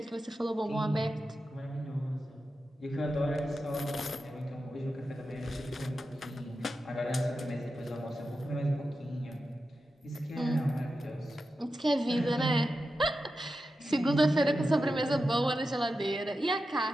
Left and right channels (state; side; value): normal; both; correlation 0.90